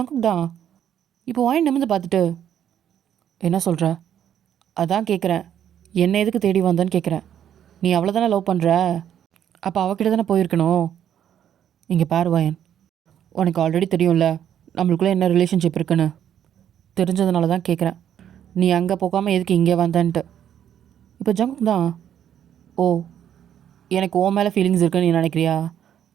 தான் இப்போ வாயின் நிமிர்ந்து பார்த்துட்டு, என்ன சொல்கிற? அதான் கேட்குறேன், என்ன எதுக்கு தேடி வந்தேன்னு கேட்குறேன். நீ அவ்வளோ தானே லவ் பண்ணுற, அப்போ அவகிட்ட தானே போயிருக்கணும். இங்கே பாரு வாயன், உனக்கு ஆல்ரெடி தெரியும்ல நம்மளுக்குள்ளே என்ன ரிலேஷன்ஷிப் இருக்குன்னு, தெரிஞ்சதுனால தான் கேட்குறேன், நீ அங்கே போகாமல் எதுக்கு இங்கே வந்தேன்ட்டு. இப்போ ஜங்குக் தான், ஓ எனக்கு உன் மேலே ஃபீலிங்ஸ் இருக்குன்னு நீ நினைக்கிறியா?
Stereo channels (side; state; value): left; quieter; 9.9 dB